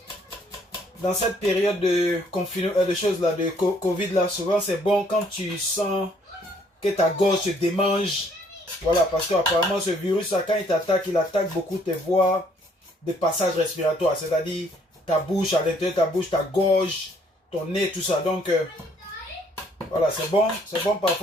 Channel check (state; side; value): normal; both; correlation 0.64